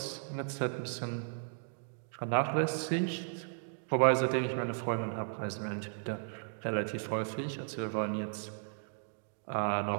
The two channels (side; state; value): left; silent; digital silence